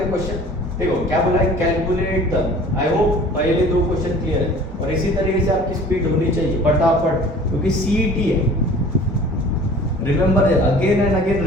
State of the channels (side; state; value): both; normal; correlation 0.47